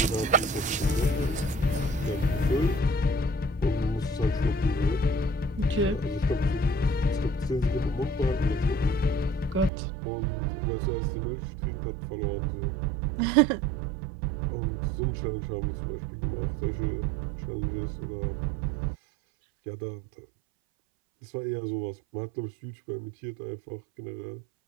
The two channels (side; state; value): left; drops out; at 9.7 s